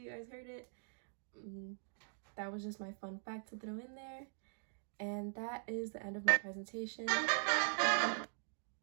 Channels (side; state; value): left; silent; digital silence